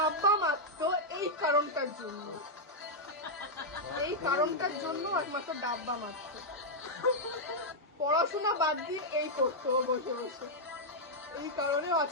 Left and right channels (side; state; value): both; normal; correlation -0.05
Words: মারতো এই কারণটার জন্য, এই কারণটার জন্য একমাত্র ডাব্বা মারতো। পড়াশোনা বাদ দিয়ে এই করতো ও বসে বসে, এই কারণে ও